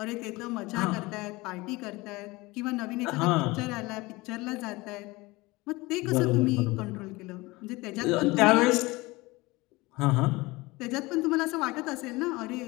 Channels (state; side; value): quieter; right; 22.1 dB